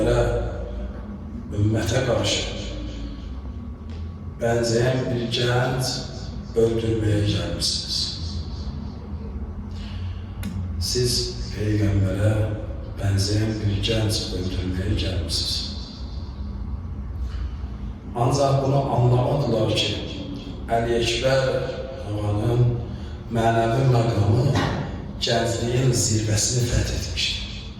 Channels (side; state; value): both; identical; correlation 1.00